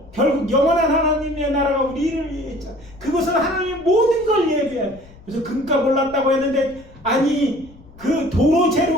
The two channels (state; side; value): noise; left; rumble, 23 dB below the sound